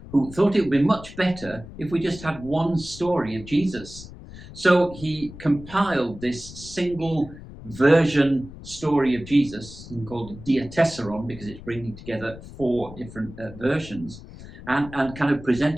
who thought it would be much better if we just had one story of Jesus. So he compiled this single version story of Jesus called Diatessaron, because it's bringing together 4 different versions, and kind of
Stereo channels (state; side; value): noise; left; rumble, 15 dB below the sound